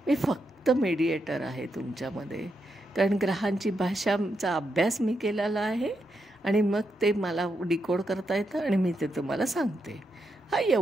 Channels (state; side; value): normal; both; correlation 0.83